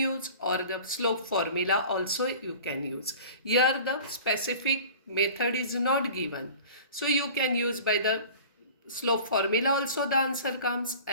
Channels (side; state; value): both; inverted; correlation -0.42